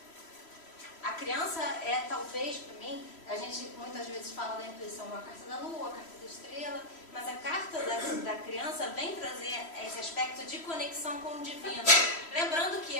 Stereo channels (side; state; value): right; late; 3.1 ms